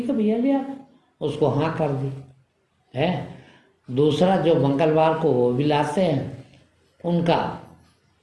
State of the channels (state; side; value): identical; both; correlation 1.00